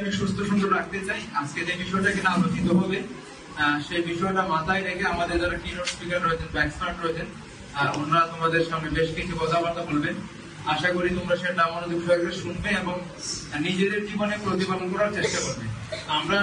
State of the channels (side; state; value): both; identical; correlation 1.00